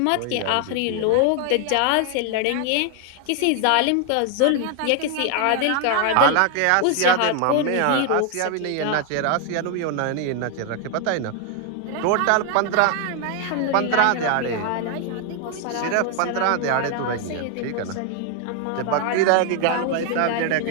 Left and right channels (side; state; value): both; different; correlation 0.00